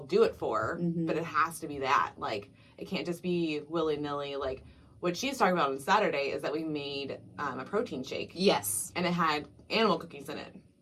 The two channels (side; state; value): both; identical; correlation 1.00